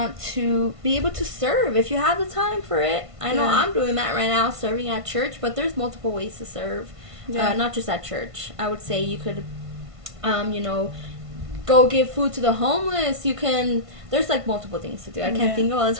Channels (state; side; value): late; left; 1.5 ms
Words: to be able to serve if you have the time for it. I know I'm doing that right now, serving at church, but there's multiple ways to serve, not just at church. I would say you could, go give food to the homeless. You can, there's like multiple things to do. I can't think of all the